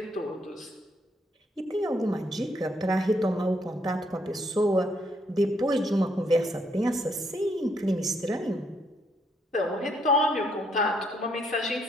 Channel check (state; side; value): normal; both; correlation 0.72